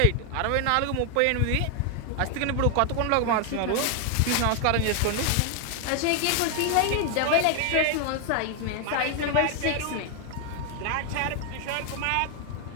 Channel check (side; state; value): both; different; correlation 0.00